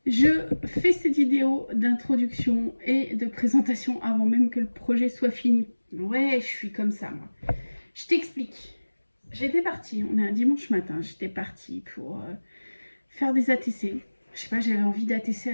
je fais cette vidéo d'introduction et de présentation avant même que le projet soit fini. Ouais, je suis comme ça, moi. Je t'explique. J'étais partie, on est un dimanche matin, j'étais partie pour faire des ATC. Je sais pas, j'avais envie d'ATC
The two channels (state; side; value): inverted; both; correlation -1.00